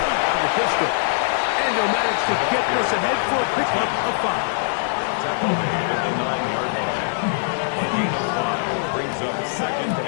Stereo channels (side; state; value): right; silent; 63 dB below the other